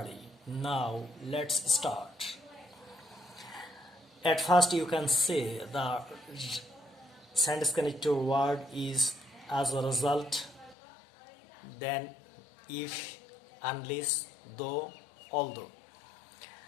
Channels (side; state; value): right; drops out; at 10.8 s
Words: Now let's start. At first you can say the sentence connector word is as a result, then if, unless, though, although.